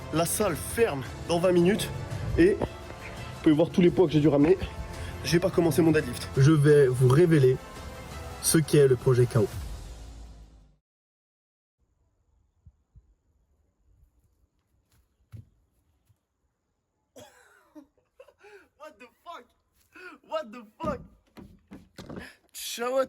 La salle ferme dans 20 minutes. Et vous pouvez voir tous les poids que j'ai dû ramener. J'ai pas commencé mon deadlift. Je vais vous révéler ce qu'est le projet KO. What the fuck? What the fuck? Ciao à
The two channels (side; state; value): both; identical; correlation 1.00